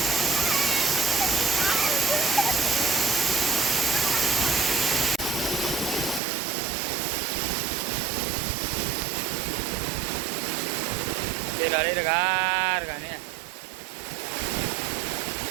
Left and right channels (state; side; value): drops out; left; at 6.2 s